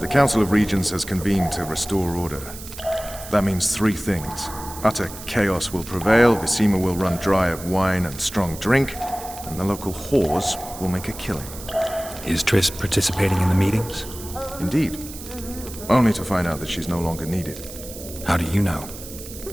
Council of Regents has convened to restore order. That means three things. Utter chaos will prevail, Visima will run dry of wine and strong drink, and the local whores will make a killing. Is Triss participating in the meetings? Indeed. Only to find out that she's no longer needed. How do you know?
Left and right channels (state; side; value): noise; right; hiss, 13 dB below the sound